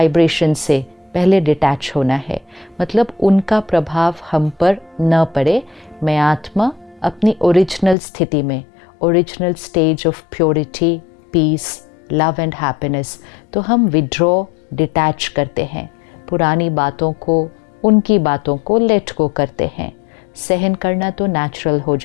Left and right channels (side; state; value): right; drops out; at 8.0 s